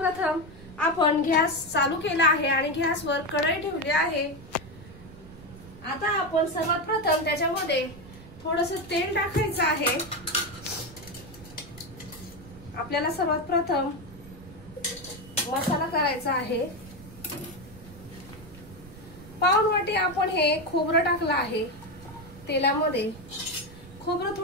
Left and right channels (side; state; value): right; noise; rumble, 18 dB below the sound